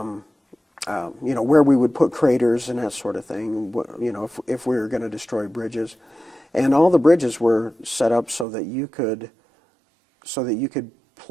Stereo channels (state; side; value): drops out; left; at 8.5 s